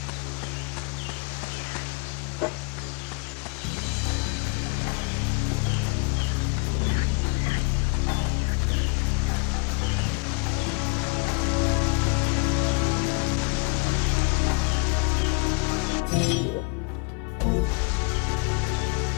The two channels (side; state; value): right; quieter; 33.3 dB